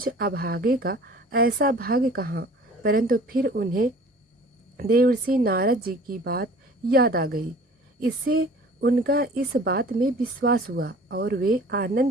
अभागे का ऐसा भाग्य कहाँ, परंतु फिर उन्हें देवर्षि नारद जी की बात याद आ गई। इससे उनका इस बात में विश्वास हुआ और वे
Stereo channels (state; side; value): normal; both; correlation 0.47